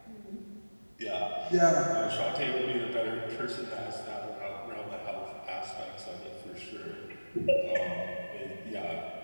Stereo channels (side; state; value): both; inverted; correlation -1.00